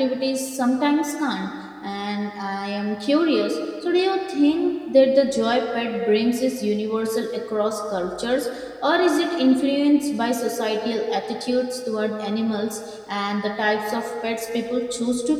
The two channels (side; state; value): both; identical; correlation 1.00